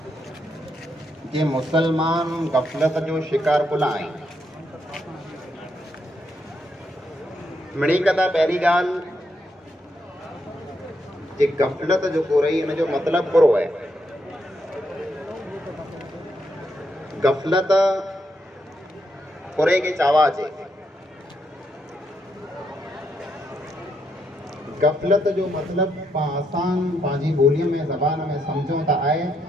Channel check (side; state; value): both; normal; correlation 0.79